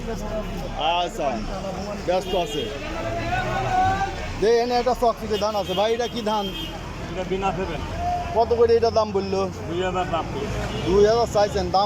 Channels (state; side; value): identical; both; correlation 1.00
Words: আচ্ছা, ব্যস্ত আছে। যে এনে একটা চকচিকে ধান আছে ভাই, এটা কি ধান? কত করে এটা দাম বললো? 2000 চাইছেন,